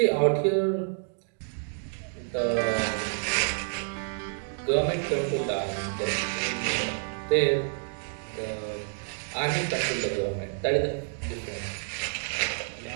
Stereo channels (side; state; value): left; silent; 59 dB below the other